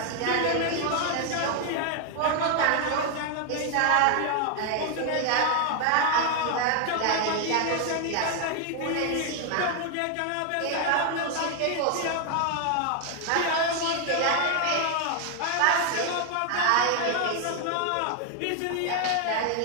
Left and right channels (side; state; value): both; different; correlation 0.00